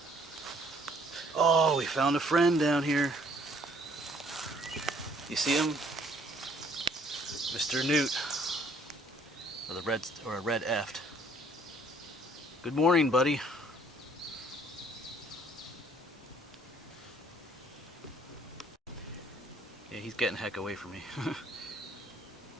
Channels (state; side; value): normal; both; correlation 0.61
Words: Oh, we found a friend down here. You see him? Mr. Newt. Or a red eft. Good morning, buddy. Yeah, he's getting heck away from me.